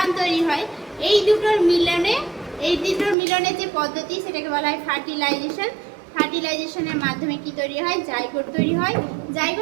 তৈরি হয়। এই দুটোর মিলনে যে পদ্ধতি সেটাকে বলা হয় ফার্টিলাইজেশন। ফার্টিলাইজেশনের মাধ্যমে কি তৈরি হয়? জাইগোট তৈরি হয়।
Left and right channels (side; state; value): left; drops out; at 3.2 s